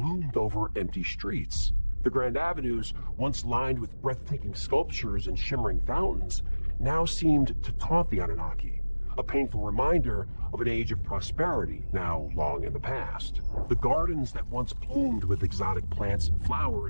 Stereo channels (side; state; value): both; inverted; correlation -1.00